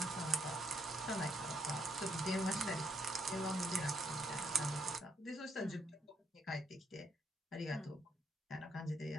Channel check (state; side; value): normal; both; correlation 0.75